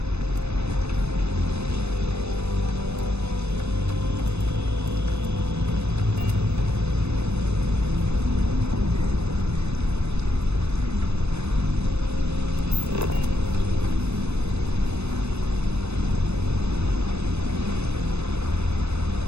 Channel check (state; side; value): late; left; 0.81 ms